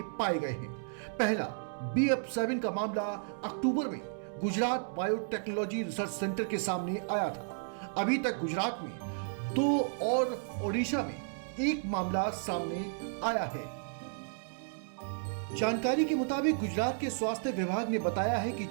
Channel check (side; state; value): left; silent; digital silence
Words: पाए गए हैं। पहला BF7 का मामला अक्टूबर में गुजरात बायोटेक्नोलॉजी रिसर्च सेंटर के सामने आया था। अभी तक गुजरात में 2 और ओडिशा में 1 मामला सामने आया है। जानकारी के मुताबिक गुजरात के स्वास्थ्य विभाग ने बताया है कि